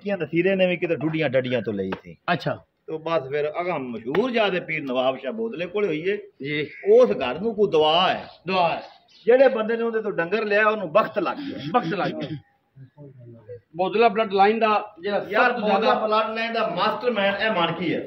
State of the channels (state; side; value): identical; both; correlation 1.00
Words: ਨਸੀਰੇ ਨੇ ਵੀ ਕਿਤੇ ਡੁੱਡੀਆਂ ਡੱਡੀਆਂ ਤੋਂ ਲਈ ਸੀ ਅੱਛਾ ਤੇ ਬਸ ਫਿਰ ਅਗਾ ਮਸ਼ਹੂਰ ਜਾਦੇ ਪੀਰ ਨਵਾਬ ਸ਼ਾਹ ਬੋਦਲੇ ਕੋਲ ਹੋਈਏ ਜੀ ਉਸ ਘਰ ਨੂੰ ਕੋਈ ਦਵਾ ਹੈ ਦੁਆ ਜਿਹੜੇ ਬੰਦੇ ਨੇ ਉਹਦੇ ਤੋਂ ਡੰਗਰ ਲਿਆ ਉਹਨੂੰ ਵਕਤ ਲੱਗ ਗਿਆ ਵਕਤ ਲੱਗ ਗਿਆ ਬੋਦਲਾ ਬਲੱਡ ਲਾਈਨ ਦਾ ਜਿਹੜਾ ਯਾਰ ਸਭ ਤੋਂ ਜ਼ਿਆਦਾ ਬਲੱਡ ਲਾਈਨ ਦਾ ਮਾਸਟਰਮਾਈਂਡ ਇਹ ਮਾਨਕੀ ਹੈ